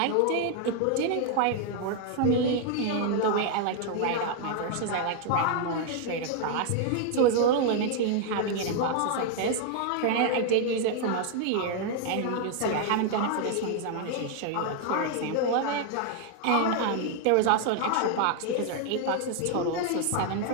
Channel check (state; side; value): different; both; correlation 0.00